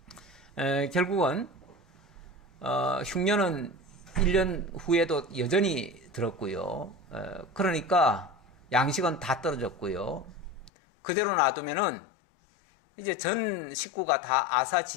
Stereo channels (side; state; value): right; drops out; at 10.7 s